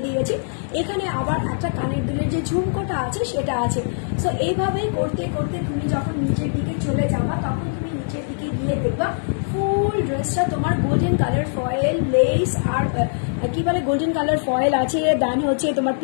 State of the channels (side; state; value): right; silent; 64 dB below the other